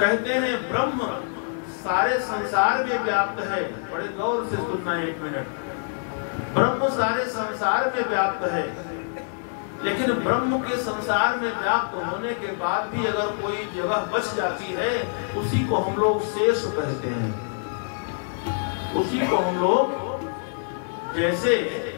हैं ब्रह्म सारे संसार में व्याप्त है। बड़े गौर से सुनना एक मिनट। ब्रह्म सारे संसार में व्याप्त है, लेकिन ब्रह्म के संसार में व्याप्त होने के बाद भी अगर कोई जगह बच जाती है, उसी को हम लोग शेष कहते हैं। उसी को हम लोग, जैसे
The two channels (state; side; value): silent; right; digital silence